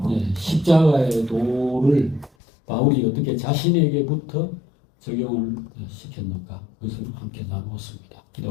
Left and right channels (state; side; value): drops out; right; at 2.3 s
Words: 십자가의 도를 바울이 어떻게 자신에게부터 적용을 시켰는가 그것을 함께 나누었습니다.